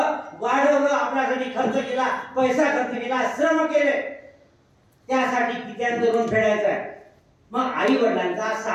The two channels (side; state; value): both; identical; correlation 1.00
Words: वाढवलं, आपल्यासाठी खर्च केला, पैसा खर्च केला, श्रम केले. त्यासाठी कित्यांचं ऋण फेडायचं आहे. मग आई वडिलांचा